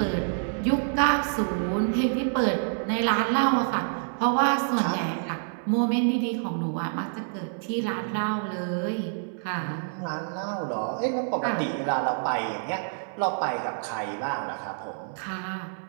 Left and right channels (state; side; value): silent; left; 60 dB below the other